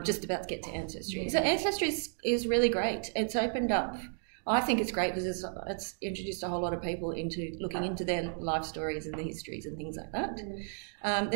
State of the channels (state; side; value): silent; left; 56 dB below the other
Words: just about to get to Ancestry. Yeah. So Ancestry is really great. It's opened up. I think it's great because it's introduced a whole lot of people into looking into their life stories and the histories and things like that.